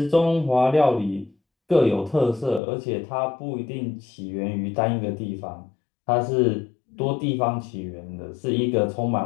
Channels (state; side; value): drops out; right; at 2.6 s